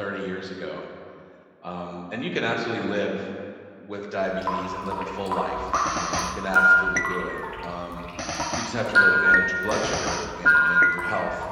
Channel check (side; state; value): both; identical; correlation 1.00